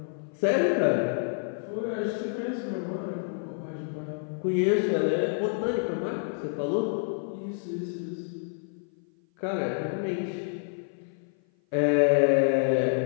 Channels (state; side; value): silent; right; 56 dB below the other